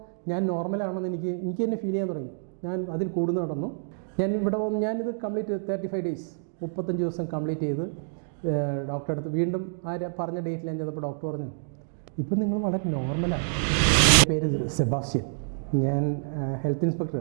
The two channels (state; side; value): silent; left; digital silence